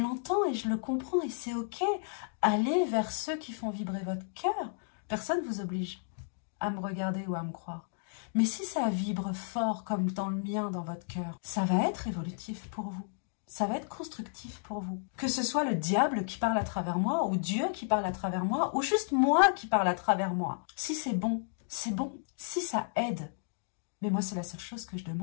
l'entends et je le comprends et c'est ok. Allez vers ceux qui font vibrer votre cœur. Personne ne vous oblige à me regarder ou à me croire. Mais si ça vibre fort comme dans le mien dans votre cœur, ça va être évolutif pour vous. Ça va être constructif pour vous. Que ce soit le diable qui parle à travers moi, ou Dieu qui parle à travers moi, ou juste moi qui parle à travers moi. Si c'est bon, c'est bon. Si ça aide. Mais moi, c'est la seule chose que je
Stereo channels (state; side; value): silent; right; digital silence